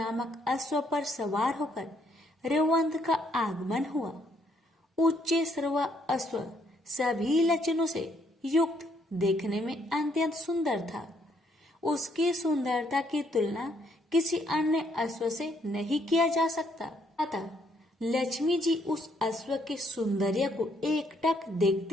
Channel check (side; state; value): both; normal; correlation 0.70